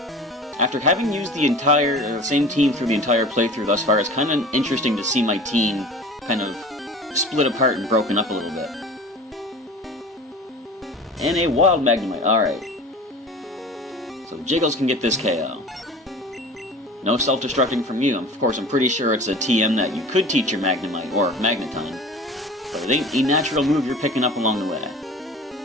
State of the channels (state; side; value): normal; both; correlation 0.39